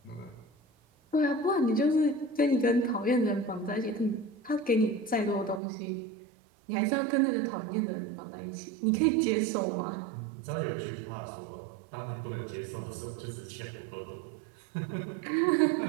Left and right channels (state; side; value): drops out; left; at 5.6 s